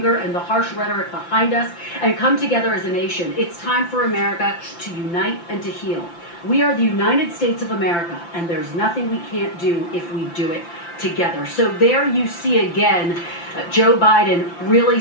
and the harsh rhetoric behind us and come together as a nation. It's time for America to unite and to heal. We are the United States of America, and there's nothing we can't do if we do it together. So there you see again Joe Biden really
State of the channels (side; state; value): right; late; 5.8 ms